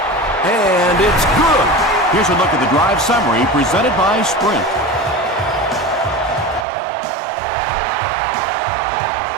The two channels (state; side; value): drops out; left; at 6.7 s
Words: And it's good. Here's a look at the drive summary presented by Sprint.